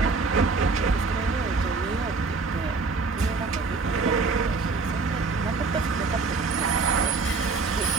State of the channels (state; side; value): quieter; left; 4.2 dB